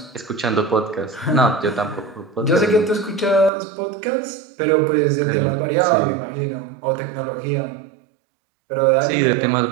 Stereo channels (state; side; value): drops out; left; at 3.5 s